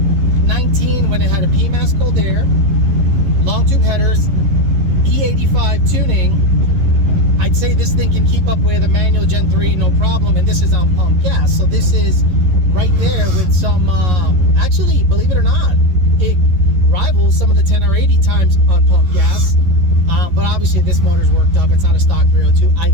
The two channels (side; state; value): left; late; 11 ms